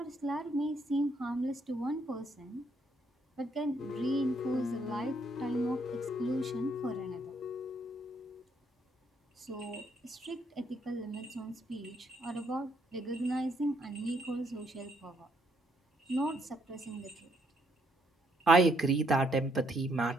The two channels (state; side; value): normal; both; correlation 0.72